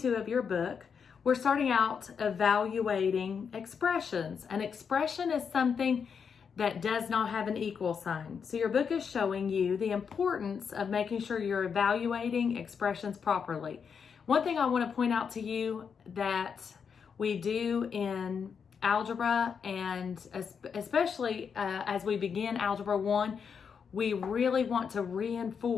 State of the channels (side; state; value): right; quieter; 6.5 dB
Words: of your book, we're starting out evaluating expressions. An expression is something that does not have an equal sign. So your book is showing you the importance of making sure you're evaluating expressions properly. One thing I want to point out to you that we do in algebra, and especially as we begin Algebra 1, we really want to